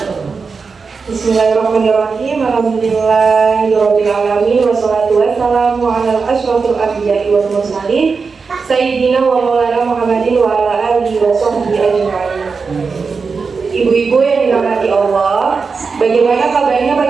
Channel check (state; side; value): quieter; left; 4.9 dB